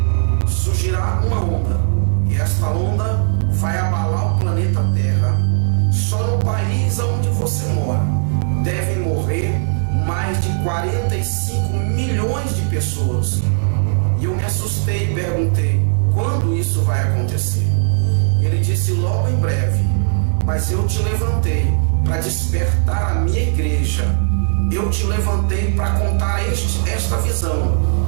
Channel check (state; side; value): silent; left; 68 dB below the other